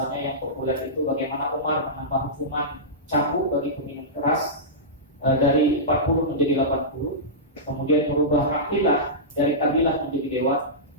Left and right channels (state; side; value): normal; both; correlation -0.16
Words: yang populer itu bagaimana Umar menambah hukuman cambuk bagi peminum keras dari 40 menjadi 80, kemudian merubah kabilah dari kabilah menjadi dewan,